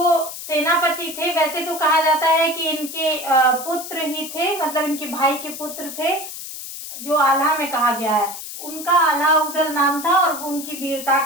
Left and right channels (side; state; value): left; noise; hiss, 10 dB below the sound